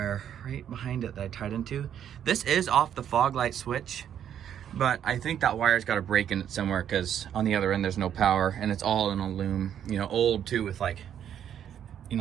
right behind it that I tied into. This is off the fog light switch, but I think that wire's got a break in it somewhere, because on the other end there's no power, and it's all in a loom, old too, with like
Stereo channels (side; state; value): left; quieter; 9.6 dB